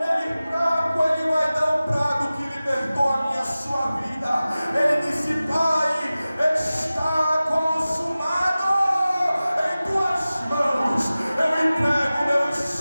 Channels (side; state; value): both; inverted; correlation -0.96